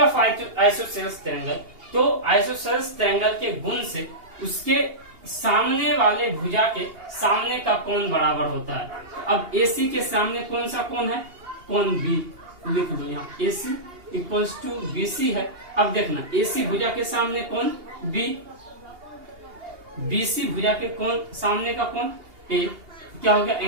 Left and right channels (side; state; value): left; late; 2.8 ms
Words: isosceles triangle. तो isosceles triangle के गुण से उसके सामने वाले भुजा के सामने का कोण बराबर होता है। अब AC के सामने कौन सा कोण है? कोण B। लिख दो यहाँ AC इक्वल्स टू BC है। अब देखना, AC भुजा के सामने कोण B, BC भुजा के कोण सामने का कोण A। क्या हो गया?